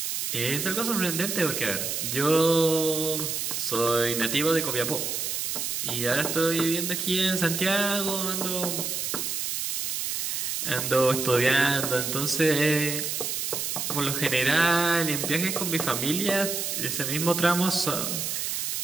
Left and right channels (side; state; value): right; noise; hiss, 2 dB below the sound